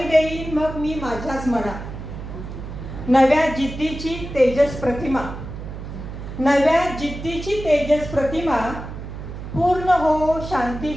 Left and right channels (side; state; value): right; noise; hum, 9 dB below the sound